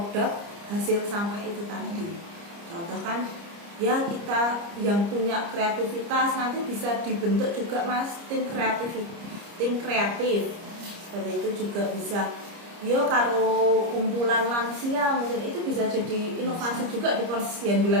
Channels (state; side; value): late; left; 30 ms